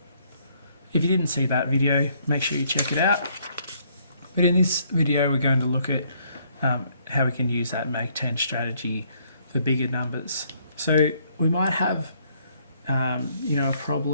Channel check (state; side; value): inverted; both; correlation -0.68